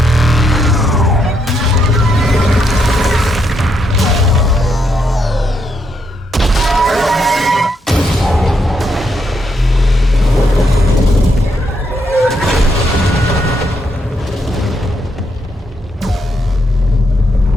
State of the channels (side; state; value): both; normal; correlation 0.77